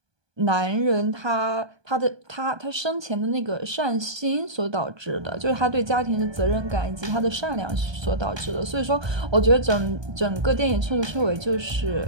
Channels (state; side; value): late; left; 1.2 ms